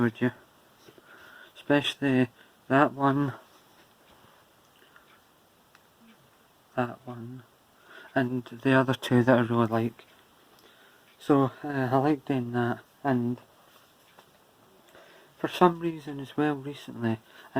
you. Especially that one, and the other two that I really like. So I like doing that, and for some reason as well recently,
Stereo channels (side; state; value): both; identical; correlation 1.00